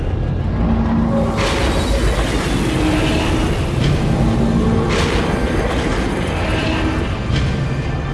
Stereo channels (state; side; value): identical; both; correlation 1.00